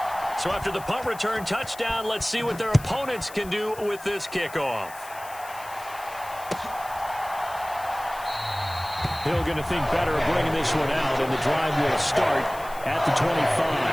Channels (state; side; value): noise; left; hiss, 18 dB below the sound